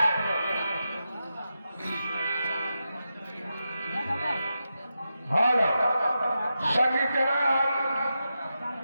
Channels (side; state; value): both; inverted; correlation -0.88